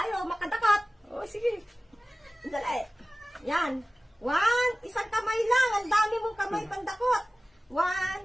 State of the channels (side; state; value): both; normal; correlation 0.97